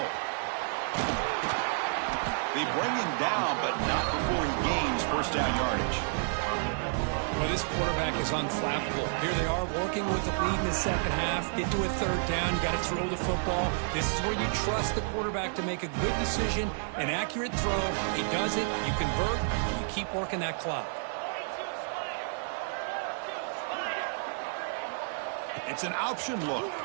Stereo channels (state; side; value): silent; left; 57 dB below the other